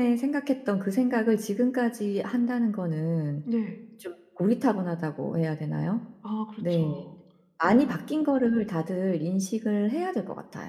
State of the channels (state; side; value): identical; both; correlation 1.00